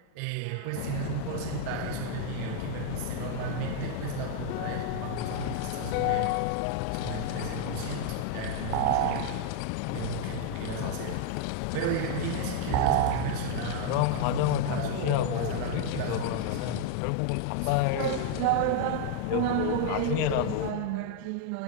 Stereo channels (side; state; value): both; different; correlation 0.00